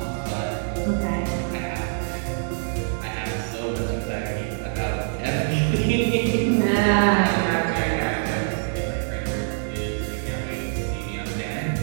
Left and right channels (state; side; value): silent; left; digital silence